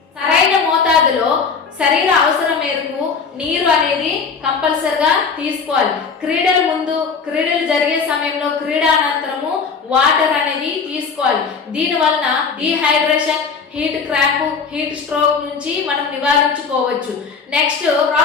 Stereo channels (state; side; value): quieter; right; 5.4 dB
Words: సరైన మోతాదులో శరీర అవసరం మేరకు నీరు అనేది కంపల్సరిగా తీసుకోవాలి. క్రీడల ముందు, క్రీడలు జరిగే సమయంలో, క్రీడానంతరము వాటర్ అనేది తీసుకోవాలి. దీని వలన dehydration, heat cramp, heat stroke నుంచి మనం నివారించుకోవచ్చు. Next